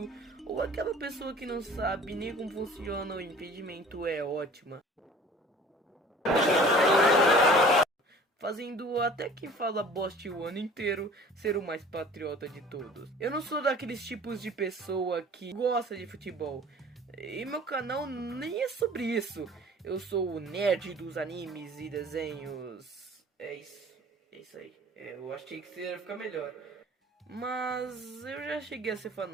ou aquela pessoa que não sabe nem como funciona o impedimento, é ótima. Fazendo até quem fala boste o ano inteiro ser o mais patriota de todos. Eu não sou daqueles tipos de pessoa que gosta de futebol. E meu canal nem é sobre isso. Eu sou o nerd dos animes e desenhos. É isso aí. Eu achei que ia ficar melhor. Mas eu já cheguei a ser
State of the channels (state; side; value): normal; both; correlation 0.47